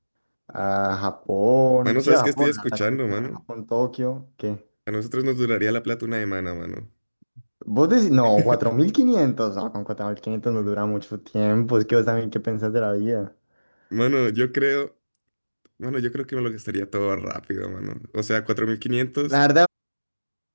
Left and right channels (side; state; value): both; inverted; correlation -1.00